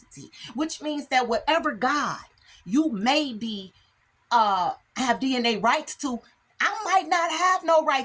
which means that whatever God you may be have DNA rights to, I might not have no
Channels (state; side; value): identical; both; correlation 1.00